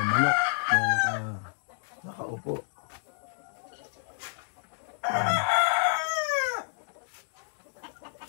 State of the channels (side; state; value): right; silent; digital silence